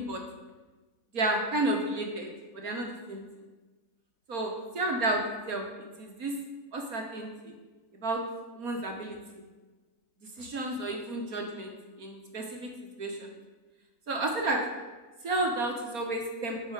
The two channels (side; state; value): left; late; 4.3 ms